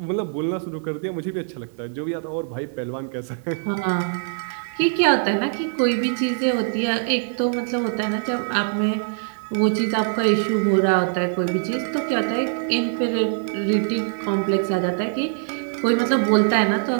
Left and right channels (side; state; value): left; silent; digital silence